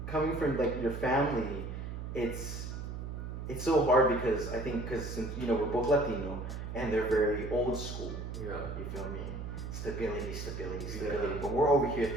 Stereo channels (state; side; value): noise; right; hum, 6 dB below the sound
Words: coming from like your family, it's so hard because I think since you know we're both Latino and they're very old school. Yeah. You feel me? Stability. Yeah. But we're over here